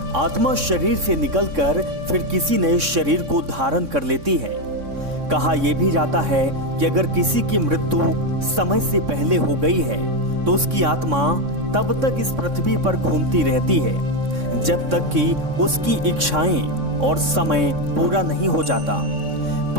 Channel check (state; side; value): late; left; 3.6 ms